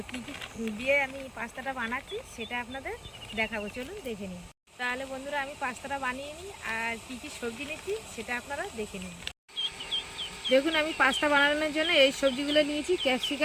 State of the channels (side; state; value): both; identical; correlation 1.00